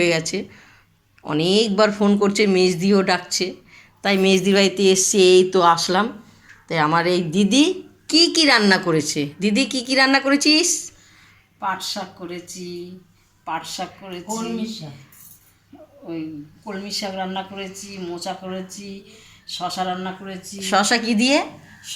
গেছে। অনেকবার ফোন করছে, মেজদিও ডাকছে, তাই মেজদির বাড়িতে এসছি, এই তো আসলাম। তাই আমার এই দিদি কি কি রান্না করেছে। দিদি কি কি রান্না করেছিস? পাট শাক করেছি, ওই কলমি শাক রান্না করেছি, মোচা করেছি, শশা রান্না করেছি। শশা কি দিয়ে?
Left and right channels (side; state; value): both; identical; correlation 1.00